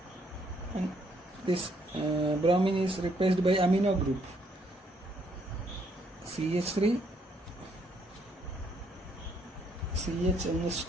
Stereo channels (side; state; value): both; normal; correlation 0.70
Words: and this bromine is replaced by amino group CH3